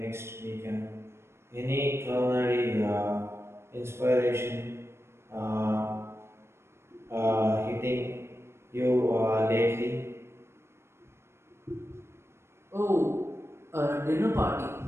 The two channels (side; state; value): left; late; 0.12 ms